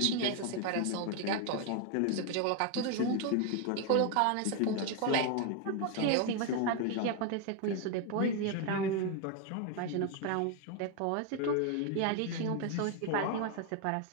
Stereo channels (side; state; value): both; different; correlation 0.01